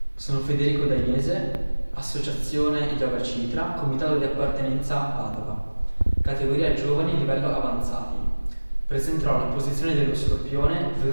Sono Federico Dainese, associazione Yoga Citra, comitato di appartenenza Padova, categoria giovani livello avanzati. Presenterò la posizione dello scorpione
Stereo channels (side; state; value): both; inverted; correlation -1.00